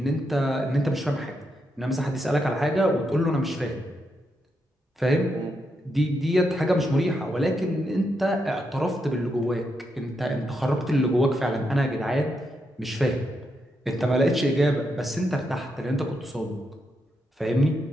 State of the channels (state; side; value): normal; both; correlation 0.82